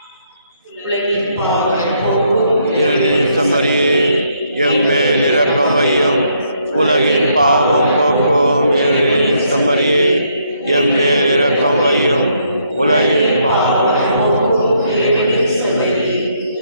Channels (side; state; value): both; inverted; correlation -0.72